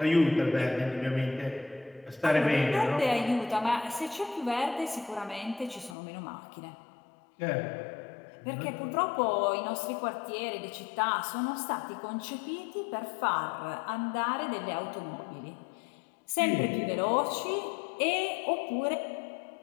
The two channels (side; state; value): right; drops out; at 6.0 s